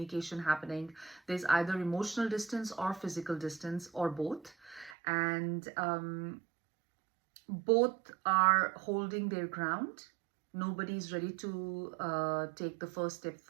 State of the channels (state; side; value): drops out; left; at 5.0 s